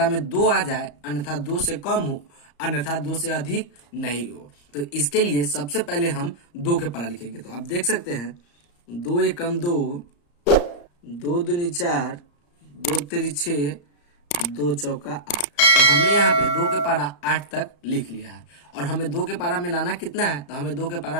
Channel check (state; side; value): late; right; 34 ms